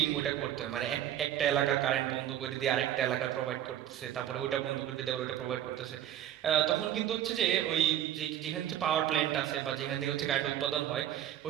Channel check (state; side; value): quieter; left; 11.5 dB